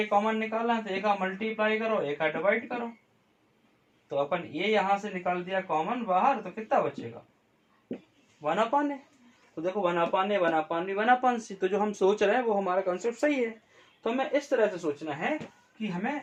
एक कॉमन निकाला है तो एक मल्टीप्लाई करो, एक डिवाइड करो, तो अपन ये यहाँ से निकाल दिया कॉमन बाहर, तो कितना बचेगा 1 अपान है। तो देखो 1 अपान है 1 अपान बी 1 अपान सी, तो जो हम सोच रहे हैं वो हमारा कंसेप्ट सही है। तो हमें इस तरह से सोचना है कि हमें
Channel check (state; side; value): identical; both; correlation 1.00